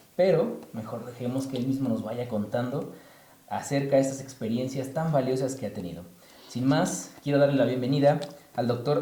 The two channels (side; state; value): both; identical; correlation 1.00